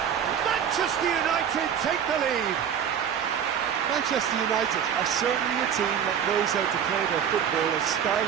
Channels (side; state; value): left; quieter; 8.5 dB